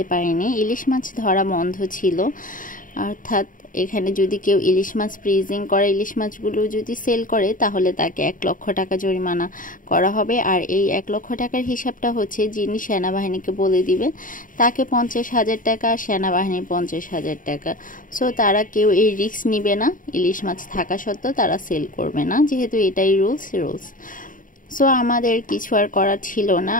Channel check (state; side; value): late; right; 0.39 ms